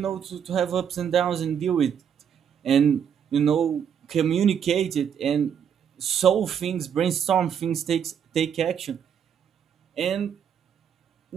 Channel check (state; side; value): quieter; left; 8.1 dB